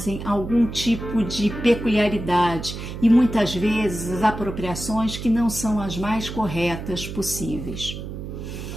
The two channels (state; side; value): noise; right; hum, 8 dB below the sound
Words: algum tipo de peculiaridade e muitas vezes as apropriações que não são as mais corretas possíveis.